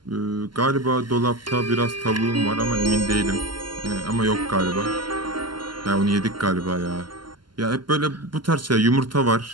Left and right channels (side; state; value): left; late; 0.71 ms